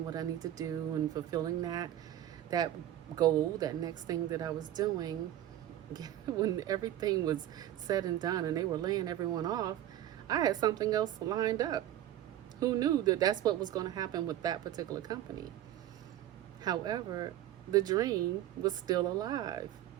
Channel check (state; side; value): quieter; left; 12.5 dB